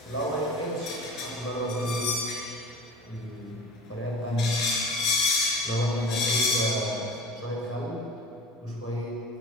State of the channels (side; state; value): both; normal; correlation 0.39